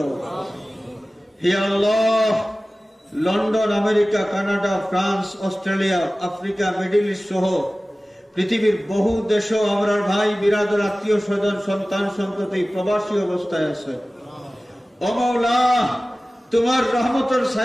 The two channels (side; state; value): both; normal; correlation 0.97